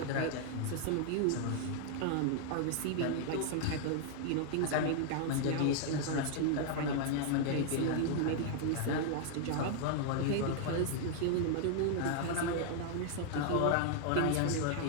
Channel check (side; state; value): both; different; correlation 0.00